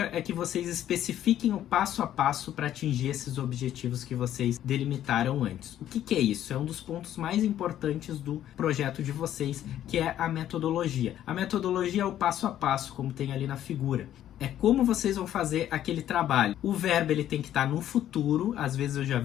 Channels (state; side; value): quieter; right; 11.6 dB